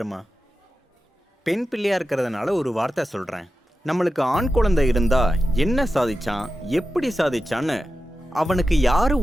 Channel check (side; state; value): both; normal; correlation 0.92